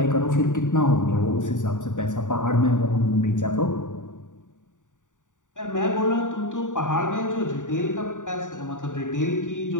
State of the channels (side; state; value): right; late; 0.86 ms